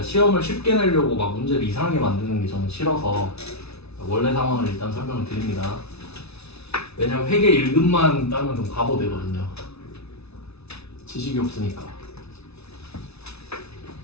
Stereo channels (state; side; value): late; right; 0.80 ms